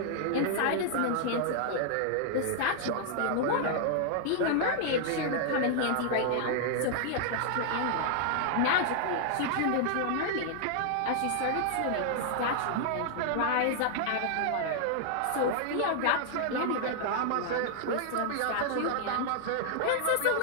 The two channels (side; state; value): both; different; correlation -0.01